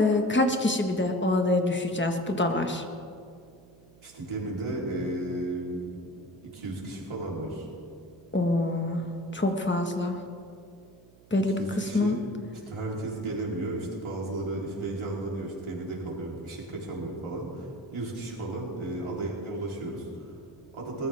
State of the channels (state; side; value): noise; right; hum, 25 dB below the sound